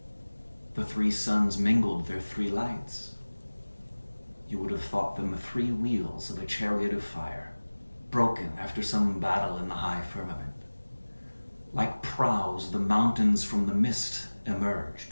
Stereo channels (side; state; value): both; inverted; correlation -1.00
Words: The three suns mingled their three lights. You would have thought them the three wheels of a chariot of fire, broken after some battle in the high firmament. Like prows, the mountains from the mist